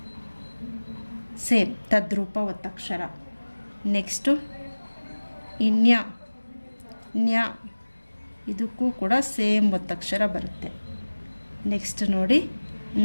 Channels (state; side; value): inverted; both; correlation -1.00